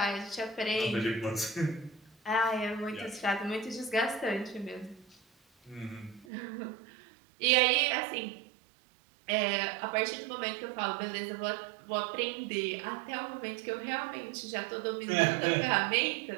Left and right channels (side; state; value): left; drops out; at 6.2 s